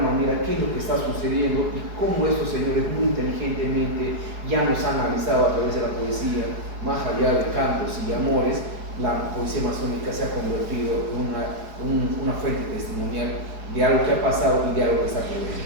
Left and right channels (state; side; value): late; left; 4.8 ms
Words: manera qué es lo que está sucediendo y cómo estos señores muy inteligentemente ya nos han avisado a través de la poesía, más allá de cantos y amores, la poesía amazónica se ha convertido en una fuente testimonial de algo que ha pasado y de algo que está por